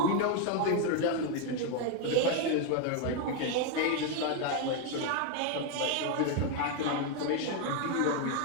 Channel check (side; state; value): both; different; correlation 0.01